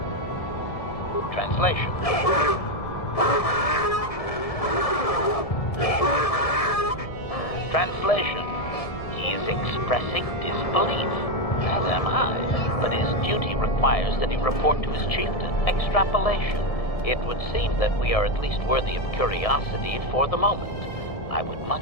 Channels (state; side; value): late; right; 1.7 ms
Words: Translation. Translation. He is expressing disbelief, as am I, but his duty requires that he report to his chieftain. Extrapolation. It would seem that we are at least worthy of curiosity for the moment. I would